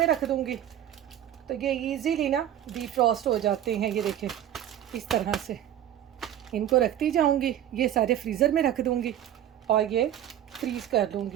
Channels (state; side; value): quieter; left; 11.3 dB